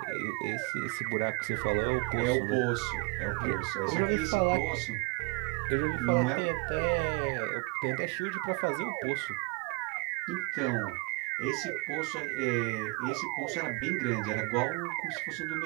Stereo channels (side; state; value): left; quieter; 29.6 dB